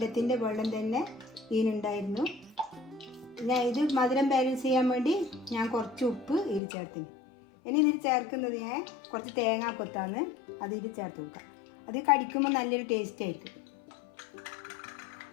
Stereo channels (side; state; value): right; drops out; at 6.6 s